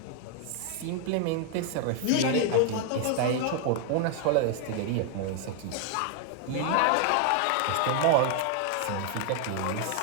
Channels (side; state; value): both; different; correlation 0.00